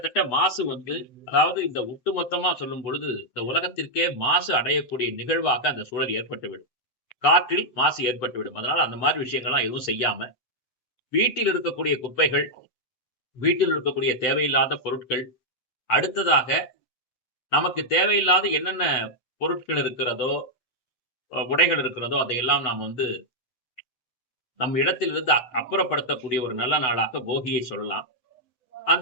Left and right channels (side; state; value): right; late; 7.9 ms